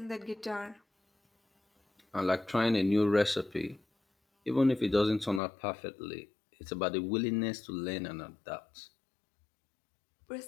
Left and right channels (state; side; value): drops out; right; at 5.4 s